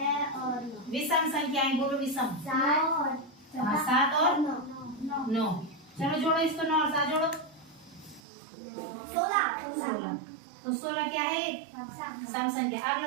और 9। विषम संख्याएं बोलो, विषम। 7 और 9। चलो जोड़ो इसको, 9 और 7 जोड़ो, 16। तो 16 क्या है? सम संख्या।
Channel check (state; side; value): drops out; left; at 8.2 s